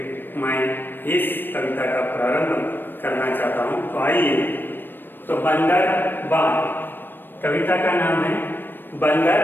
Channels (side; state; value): right; late; 0.095 ms